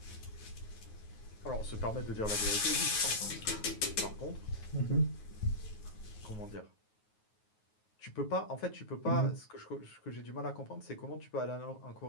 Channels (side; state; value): right; late; 9.4 ms